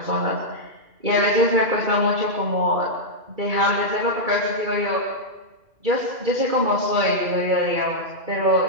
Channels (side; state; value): left; late; 2.4 ms